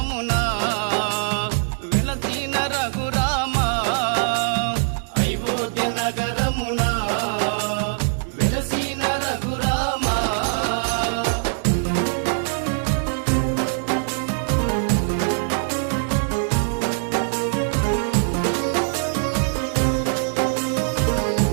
వెలసిన రఘురామ అయోధ్య నగరమున వెలసిన రఘురామ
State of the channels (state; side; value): silent; left; 64 dB below the other